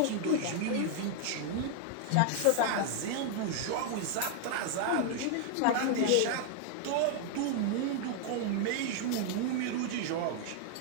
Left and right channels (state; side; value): different; both; correlation 0.00